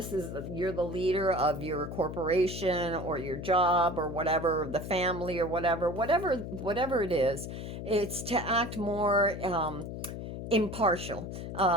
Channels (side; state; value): left; noise; hum, 7 dB below the sound